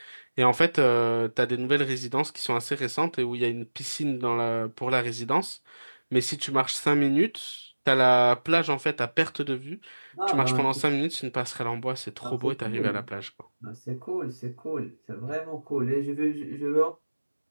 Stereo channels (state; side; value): inverted; both; correlation -1.00